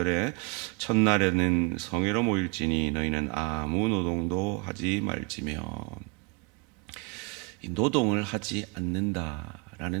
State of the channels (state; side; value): quieter; left; 27.4 dB